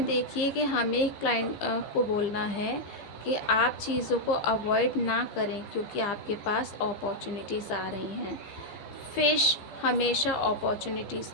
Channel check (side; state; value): right; late; 15 ms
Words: देखिए कि हमें क्लाइंट को बोलना है कि आप चीज़ों को अवॉइड ना करें क्योंकि आपके पास अपॉर्चुनिटीज़ आ रही हैं। फिश हमेशा अपॉर्चुनिटीज़